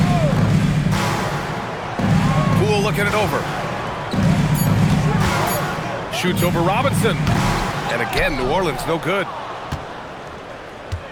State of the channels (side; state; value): both; identical; correlation 1.00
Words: Poole looking it over. Shoots over Robinson. And again, New Orleans no good.